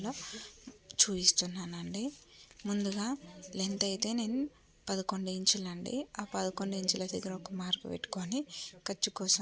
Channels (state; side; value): identical; both; correlation 1.00